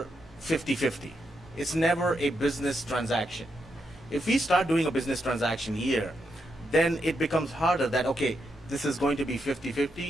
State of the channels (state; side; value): normal; both; correlation 0.82